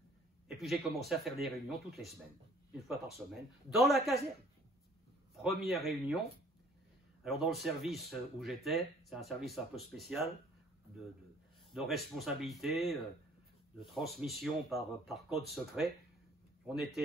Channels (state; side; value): normal; both; correlation 0.56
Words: Et puis j'ai commencé à faire des réunions toutes les semaines, une fois par semaine, dans la caserne. Première réunion. Alors dans le service où j'étais, c'est un service un peu spécial, de responsabilité, de transmission par code secret. On